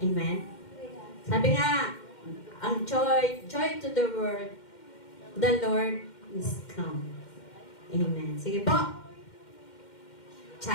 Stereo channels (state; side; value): late; right; 2.1 ms